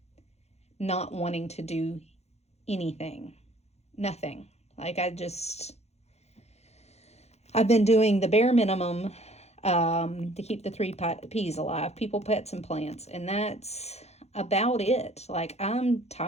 not wanting to do anything, nothing. Like I've been doing the bare minimum to keep the 3 P's alive, people, pets, and plants. And that's about it. Like I'm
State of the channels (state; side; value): late; right; 0.31 ms